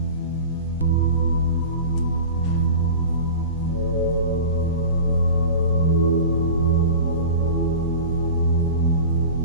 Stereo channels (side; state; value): both; inverted; correlation -0.34